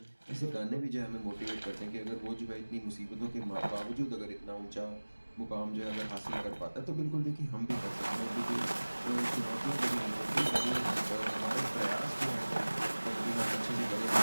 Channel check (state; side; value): inverted; both; correlation -1.00